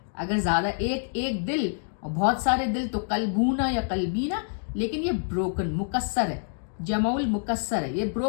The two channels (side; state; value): right; silent; digital silence